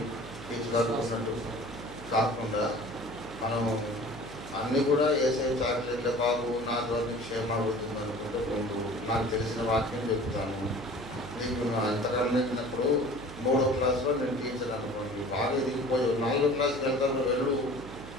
తీసుకున్నట్టు కాకుండా మనము అన్నీ కూడా వేసే చాక్లెట్లే బాబు నా ద్వారా క్షేమ అవుతుంది అనుకుంటే ముందు నాకు తెలిసిన వాక్యం చెప్తాను. నీకు అంతకన్నా వెళ్ళినప్పుడు 3వ క్లాస్లో నేను టీచర్ అనుకోండి, బాగా ఎదిగిపోయి 4వ క్లాస్కి వెళ్తాను, వెళ్ళు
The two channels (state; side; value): noise; right; hum, 13 dB below the sound